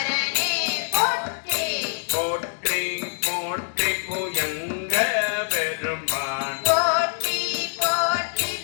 போற்றி போற்றி போற்றி புயங்க பெருமான் போற்றி போற்றி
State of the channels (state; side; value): silent; right; digital silence